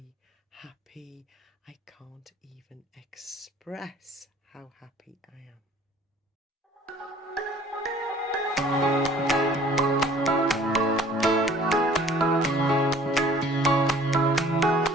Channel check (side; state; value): both; normal; correlation 0.52